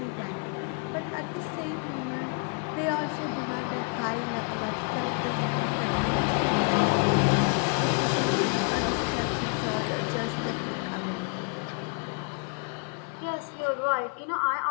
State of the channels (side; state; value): right; quieter; 39.6 dB